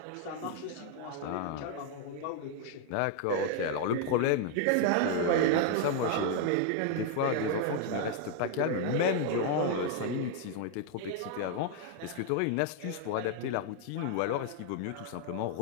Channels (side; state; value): both; different; correlation 0.00